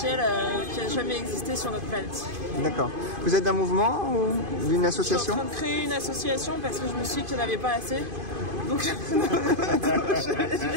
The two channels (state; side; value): late; left; 2.5 ms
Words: qui a jamais existé sur notre planète. D'accord. Vous êtes d'un mouvement ou d'une association? Je suis en train de créer une association parce que je me suis dit qu'il n'y en avait pas assez. Donc je me